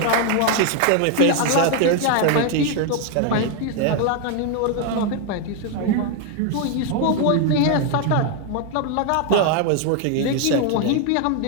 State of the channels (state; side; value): different; both; correlation 0.01